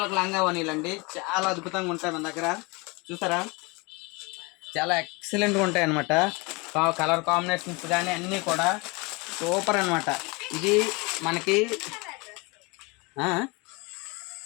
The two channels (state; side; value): quieter; right; 27.4 dB